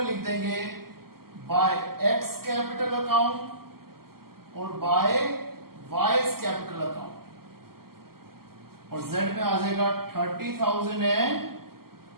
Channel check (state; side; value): late; left; 0.93 ms